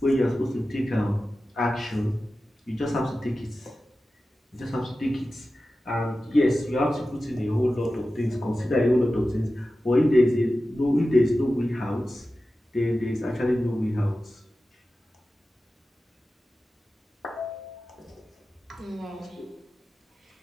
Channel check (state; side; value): normal; both; correlation 0.94